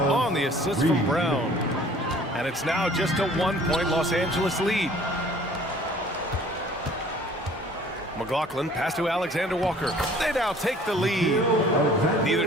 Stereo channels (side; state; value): both; normal; correlation 0.52